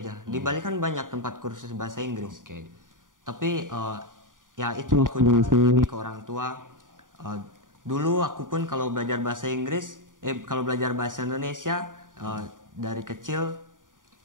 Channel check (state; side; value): late; left; 0.88 ms